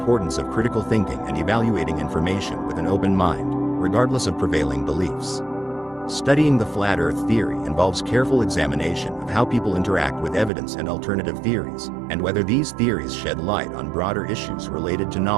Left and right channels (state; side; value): drops out; left; at 10.5 s